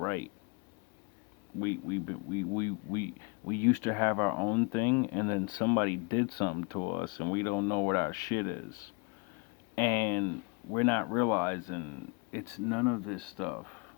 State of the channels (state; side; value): quieter; right; 31.3 dB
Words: We used to have our own thing, and then somebody did something to us, and we don't know what our shit is, and we're not realizing it's none of this stuff.